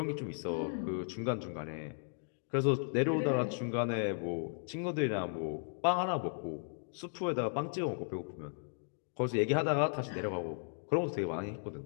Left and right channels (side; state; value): right; silent; digital silence